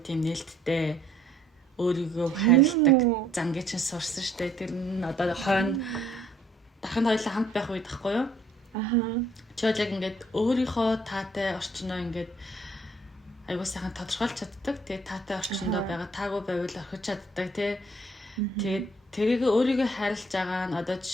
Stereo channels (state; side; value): normal; both; correlation 0.62